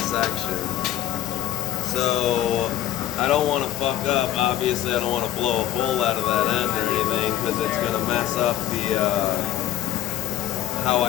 section. So, I don't wanna fuck up, obviously I don't wanna blow a hole out of that end or anything, because it's gonna mess up the, how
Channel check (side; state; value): right; quieter; 12.9 dB